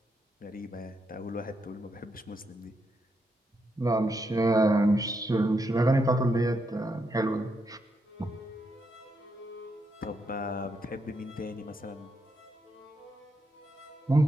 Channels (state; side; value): normal; both; correlation 0.81